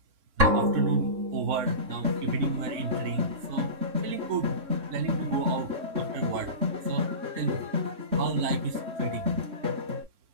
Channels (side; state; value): left; late; 3.6 ms